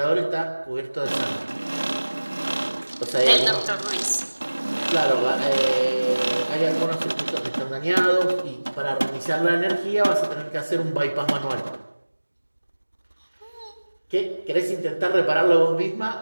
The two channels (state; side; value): inverted; both; correlation -1.00